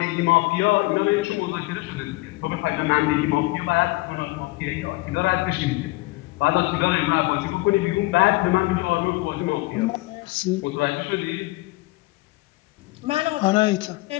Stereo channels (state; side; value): quieter; right; 21.9 dB